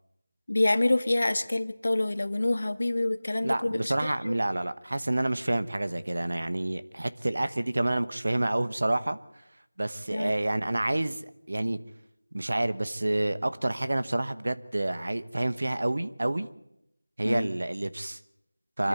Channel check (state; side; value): inverted; both; correlation -0.98